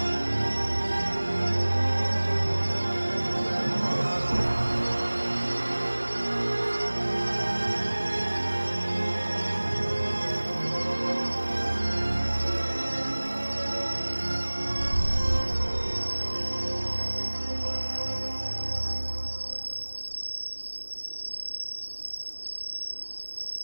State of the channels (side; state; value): both; inverted; correlation -1.00